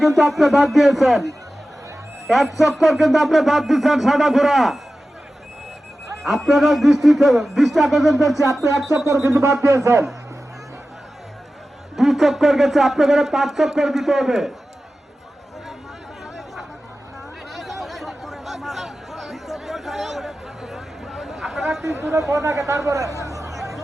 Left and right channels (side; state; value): both; normal; correlation 0.94